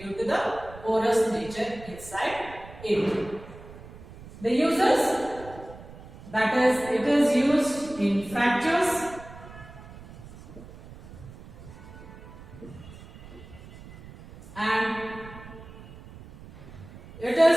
to the porous nature inside it. The uses, That is, it is used in fractures, and it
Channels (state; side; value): noise; right; rumble, 17 dB below the sound